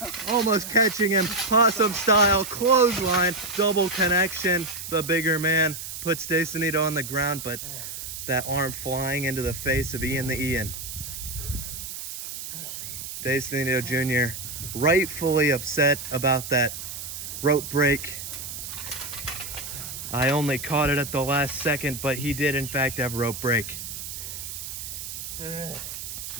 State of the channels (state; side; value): noise; right; hiss, 8 dB below the sound